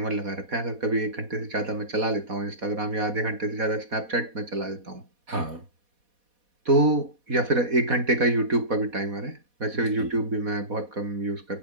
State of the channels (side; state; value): left; late; 4.1 ms